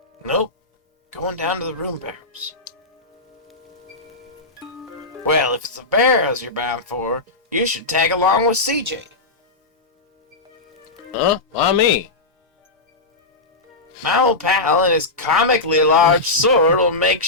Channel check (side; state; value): right; quieter; 3.2 dB